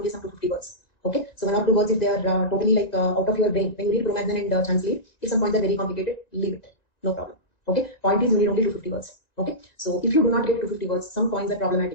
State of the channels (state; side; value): late; right; 1.9 ms